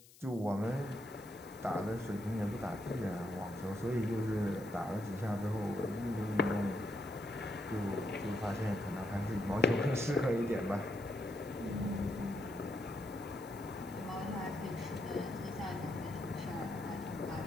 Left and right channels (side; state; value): left; noise; hiss, 22 dB below the sound